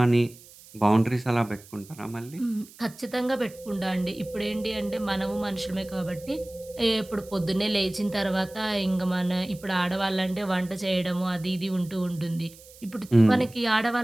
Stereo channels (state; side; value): noise; right; hiss, 22 dB below the sound